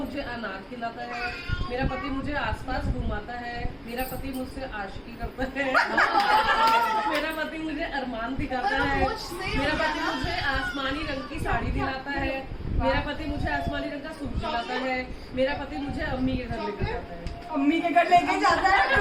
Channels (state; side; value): identical; both; correlation 1.00